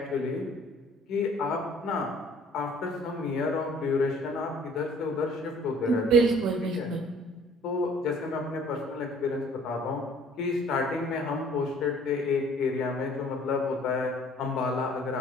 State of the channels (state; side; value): normal; both; correlation 0.55